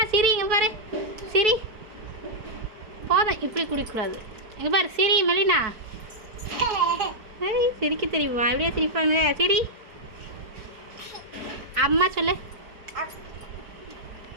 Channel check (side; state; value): left; late; 4.6 ms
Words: சிரி, இங்கே பாரு, சிரி. போதும், இப்படி குடிக்கக்கூடாது. இங்கே பாரு, சிரி மெலினா. ஏய் சிரிக்க தெரியுமா? இப்படியா சிரிப்பாங்க? சிரி. அம்மா சொல்லு.